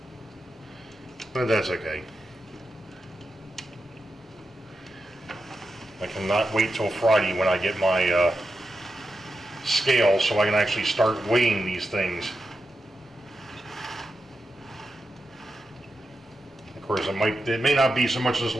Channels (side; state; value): both; normal; correlation 0.89